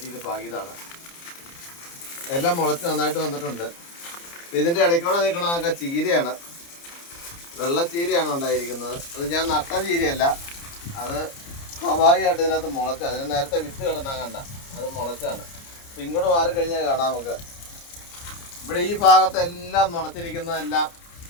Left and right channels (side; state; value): right; late; 29 ms